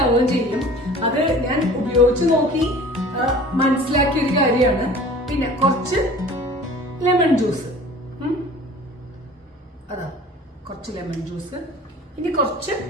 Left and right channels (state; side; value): normal; both; correlation 0.44